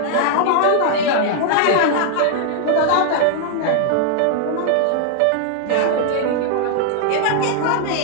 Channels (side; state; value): both; different; correlation 0.00